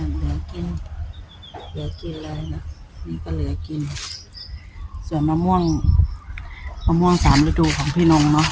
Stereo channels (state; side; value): identical; both; correlation 1.00